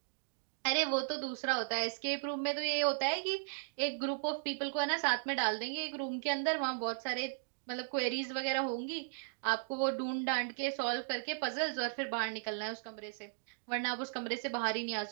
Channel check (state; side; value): silent; left; digital silence